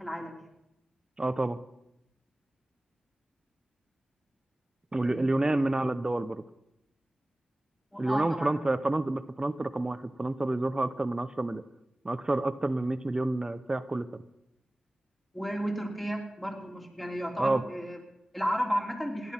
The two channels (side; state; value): both; normal; correlation 0.98